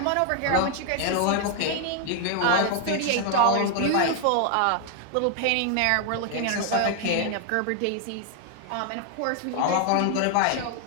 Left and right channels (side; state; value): both; different; correlation 0.00